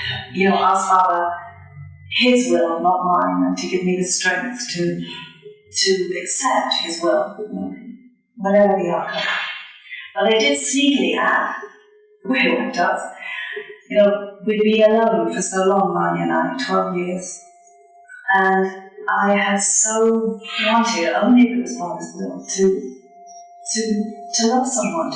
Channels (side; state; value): both; identical; correlation 1.00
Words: asked Father His will, not mine, and to give me the strength to accept His will, whatever the outcome. But I did sneakily add, the way one does, we'd been alone for so long, Marnie and I, 12 years. And I had so wanted, only if it was Father's will, to love someone,